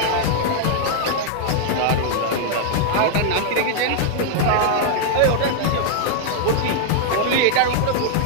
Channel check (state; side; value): different; both; correlation -0.01